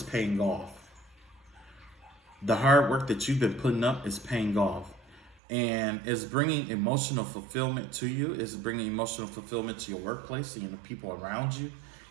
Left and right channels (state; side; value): drops out; left; at 5.4 s